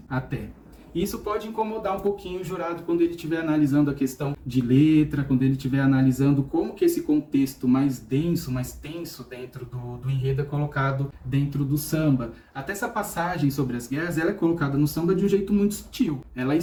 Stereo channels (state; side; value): identical; both; correlation 1.00